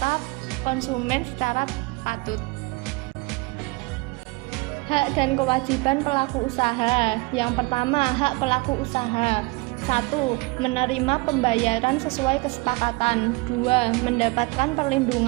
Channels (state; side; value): quieter; left; 25.2 dB